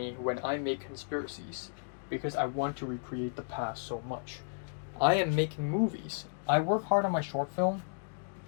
when I make conspiracies, because I want to recreate the past so much. I am making movies. I work hard on my short film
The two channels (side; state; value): right; silent; digital silence